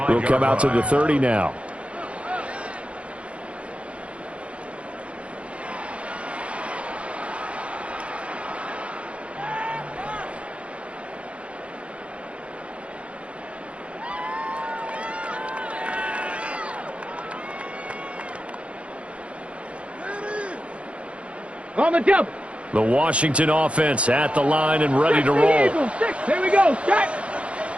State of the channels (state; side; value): late; left; 0.061 ms